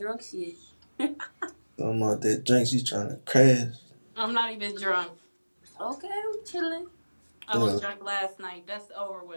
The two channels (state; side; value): inverted; both; correlation -1.00